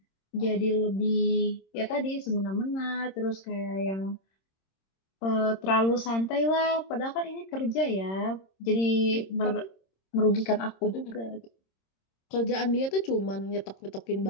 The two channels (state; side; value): late; right; 26 ms